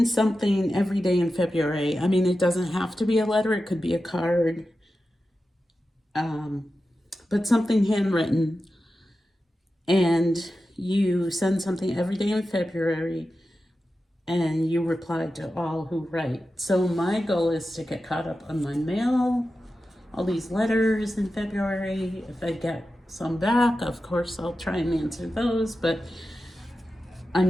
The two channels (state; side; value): normal; both; correlation 0.92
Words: something every day in February. I mean, it doesn't have to be a letter. It could be a card, but something handwritten. And you send something every day in February, and you reply to all who write. So my goal is to get caught up on my mail, all these letters in February. If I get some back, of course, I'll try and answer those. But